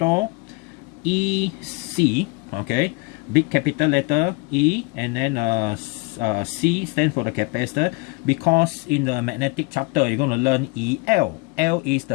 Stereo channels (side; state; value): right; quieter; 27.7 dB